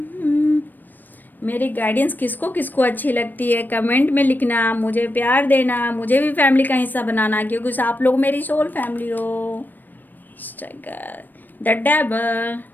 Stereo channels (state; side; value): late; right; 0.090 ms